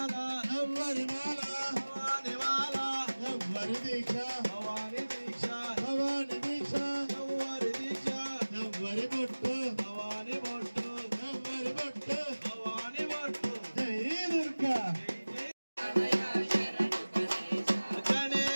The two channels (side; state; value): both; inverted; correlation -1.00